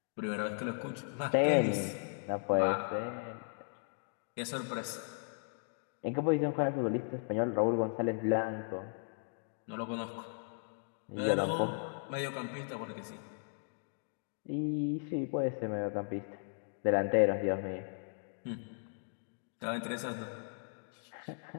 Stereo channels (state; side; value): silent; right; digital silence